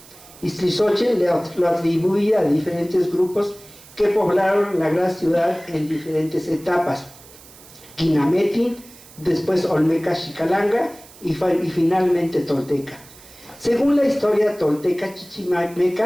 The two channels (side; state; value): right; noise; hiss, 22 dB below the sound